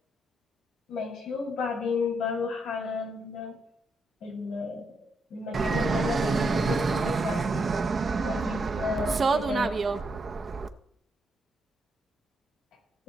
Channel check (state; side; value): normal; both; correlation 0.79